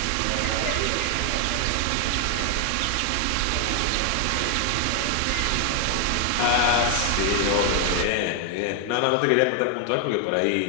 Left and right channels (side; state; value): both; different; correlation 0.00